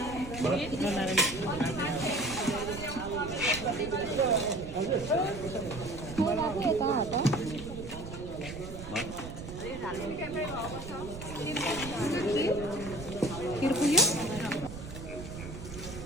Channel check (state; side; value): noise; right; rumble, 10 dB below the sound